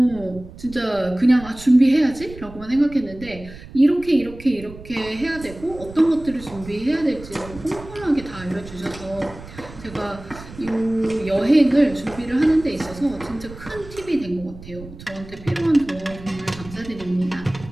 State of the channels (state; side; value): noise; right; rumble, 16 dB below the sound